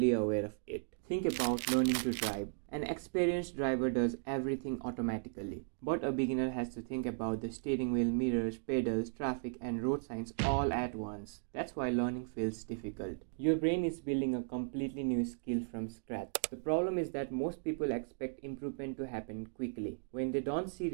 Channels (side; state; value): left; silent; digital silence